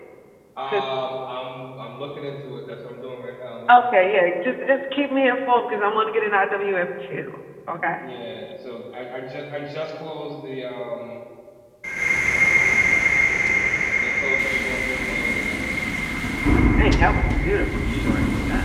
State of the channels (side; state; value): both; identical; correlation 1.00